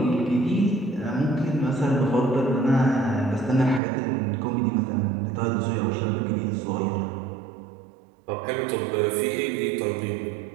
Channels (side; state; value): left; drops out; at 3.8 s